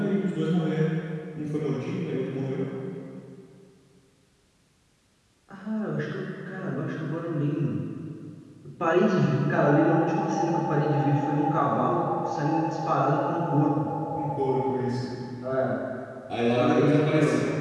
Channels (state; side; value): identical; both; correlation 1.00